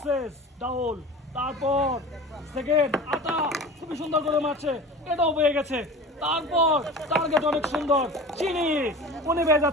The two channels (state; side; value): normal; both; correlation 0.36